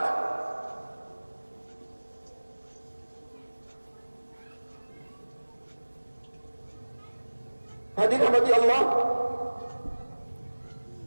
Hadirin rahmati Allah,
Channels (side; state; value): both; inverted; correlation -1.00